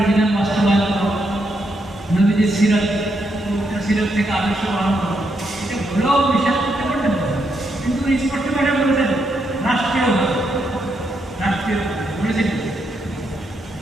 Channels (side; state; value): both; normal; correlation 0.79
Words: বিধান বাস্তবায়ন করো, নবীজির সিরাত থেকে আদর্শ পালন করো, এটা ভুলেও বিশ্বাস করতে পারবেন না। কিন্তু স্পষ্ট ভাবে বলেছেন রাষ্ট্রীয় বলেছেন